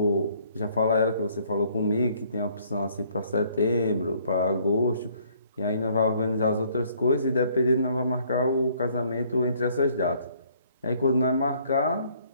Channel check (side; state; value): both; inverted; correlation -0.63